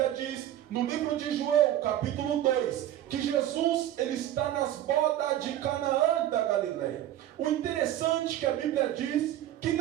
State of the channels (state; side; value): quieter; left; 12.5 dB